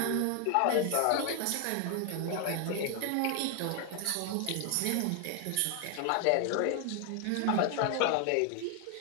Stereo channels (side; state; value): both; different; correlation 0.00